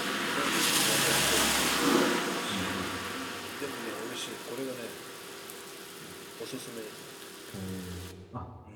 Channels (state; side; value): identical; both; correlation 1.00